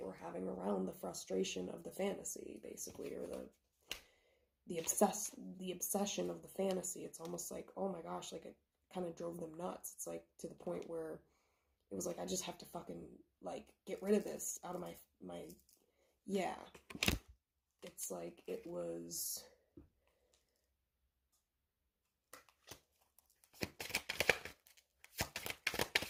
were having around the frustration of the fantasy, basically, or the obsession of the fantasy. It's almost like, oh my gosh, like it kind of drove them nuts. It's like to the point where it was like, I just have to fucking like get rid of this out of my yeah. It's like it was.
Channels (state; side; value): identical; both; correlation 1.00